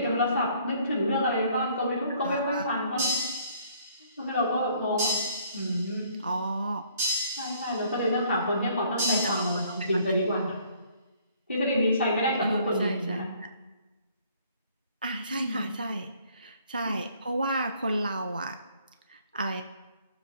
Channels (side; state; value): both; inverted; correlation -0.61